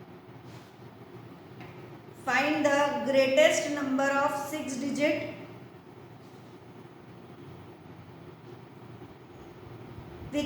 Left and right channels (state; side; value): identical; both; correlation 1.00